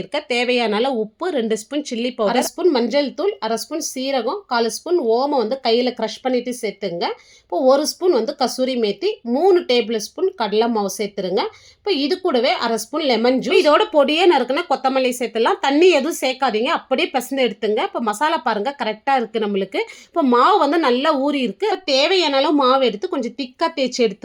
தேவையான அளவு உப்பு, 2 ஸ்பூன் சில்லி பவுடர், 1 ஸ்பூன் மஞ்சள் தூள், 1/2 ஸ்பூன் சீரகம், 1/4 ஸ்பூன் ஓமம் வந்து கையில் க்ரஷ் பண்ணிட்டு சேர்த்துங்க. இப்போ 1 ஸ்பூன் வந்து கசூரி மேத்தி, 3 டேபிள் ஸ்பூன் கடலை மாவு சேர்த்துருங்க. இப்போ இது கூடவே 1/2 ஸ்பூன் லெமன் ஜூஸ், இதோட பொடியே நறுக்குனா கொத்தமல்லி சேர்த்துலாம். தண்ணி எதுவும் சேர்க்காதீங்க, அப்படியே பிசைந்து எடுத்துங்க. இப்போ மசாலா பாருங்க கரெக்டாக இருக்குது நம்மளுக்கு. இப்போ மாவு வந்து நல்லா ஊறி இருக்கு. தேவையான அளவு மாவு எடுத்து கொஞ்சம் திக்காக தேய்ச்சி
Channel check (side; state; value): both; identical; correlation 1.00